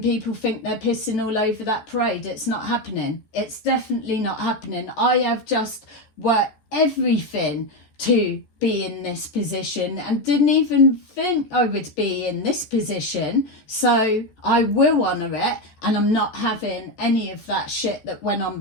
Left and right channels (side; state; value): right; late; 14 ms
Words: people think they're pissing all over that parade. It's not happening. It's definitely not happening. I have just worked everything to be in this position and didn't even think I would be in this position. So I will honour it, and I'm not having any of that shit that went on